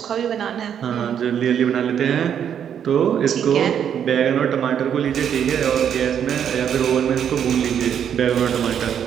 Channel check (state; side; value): quieter; left; 8.7 dB